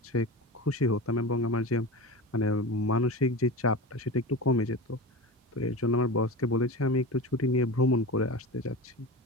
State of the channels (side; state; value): both; normal; correlation 0.28